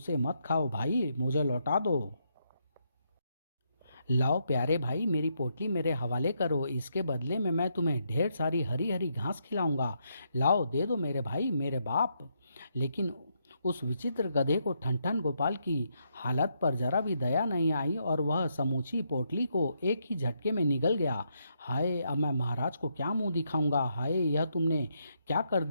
मत खाओ भाई, मुझे लौटा दो। लाओ प्यारे भाई, मेरी पोटली मेरे हवाले करो, इसके बदले में मैं तुम्हें ढेर सारी हरी हरी घास खिलाऊंगा। लाओ दे दो मेरे भाई, मेरे बाप। लेकिन उस विचित्र गधे को ठनठन गोपाल की हालत पर जरा भी दया नहीं आई और वह समूची पोटली को एक ही झटके में निगल गया। हाय, अब मैं महाराज को क्या मुंह दिखाऊंगा? हाय, यह तुमने क्या कर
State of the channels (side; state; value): both; inverted; correlation -0.78